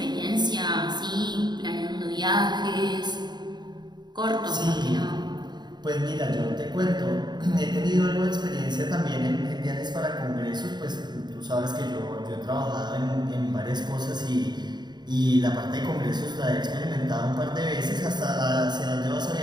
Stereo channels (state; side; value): late; left; 0.21 ms